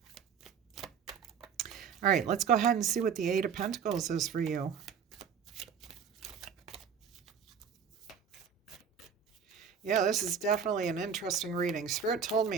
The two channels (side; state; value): left; quieter; 6.9 dB